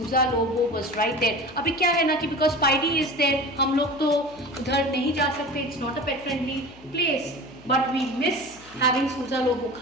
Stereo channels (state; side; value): noise; left; hum, 24 dB below the sound